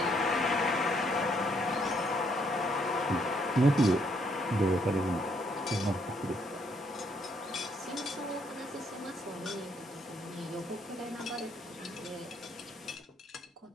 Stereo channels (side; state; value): both; normal; correlation 0.71